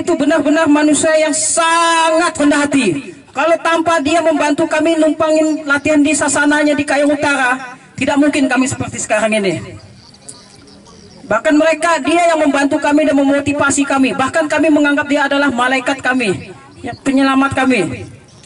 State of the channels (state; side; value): identical; both; correlation 1.00